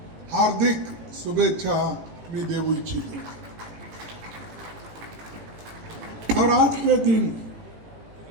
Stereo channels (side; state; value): left; late; 18 ms